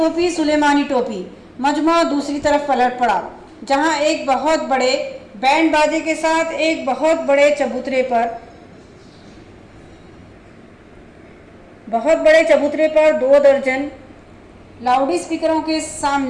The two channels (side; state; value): both; identical; correlation 1.00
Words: सुलेमानी टोपी। मजमा दूसरी तरफ पलट पड़ा, जहां एक बहुत बड़े बैंड बाजे के साथ एक बहुत बड़े चबूतरे पर 2 दर्जन लाउड स्पीकरों के